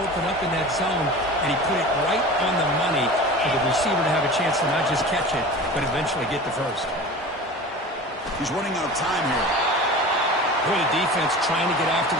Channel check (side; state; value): both; normal; correlation 0.36